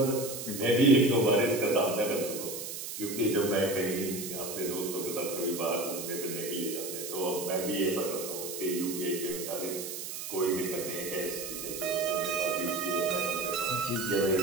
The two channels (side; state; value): right; noise; hiss, 7 dB below the sound